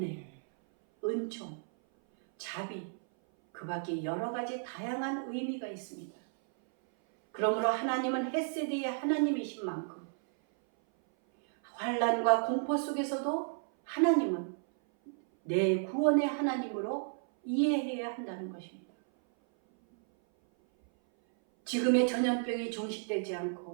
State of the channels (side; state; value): left; silent; 56 dB below the other